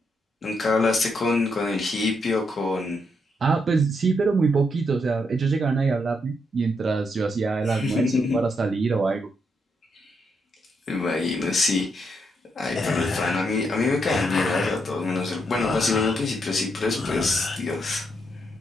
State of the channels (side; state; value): both; normal; correlation 0.79